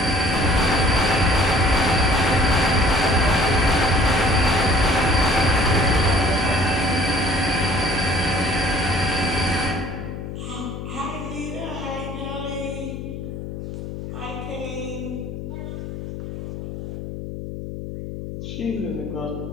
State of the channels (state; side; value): noise; left; hum, 8 dB below the sound